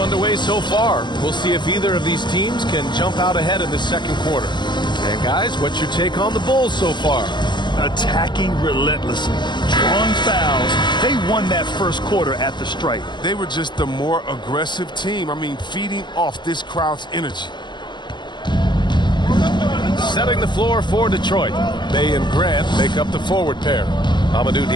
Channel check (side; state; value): right; late; 0.21 ms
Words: so far. We'll see if either of these teams can jump out ahead in the second quarter. And guys, what's your take on the Bulls so far? Attacking relentlessly, drawing fouls. They won that first quarter at the stripe. They were just the more aggressive team. I mean, feeding off this crowd's energy. Setting the floor for Detroit. Bay and Grant make up the forward pair. Amadou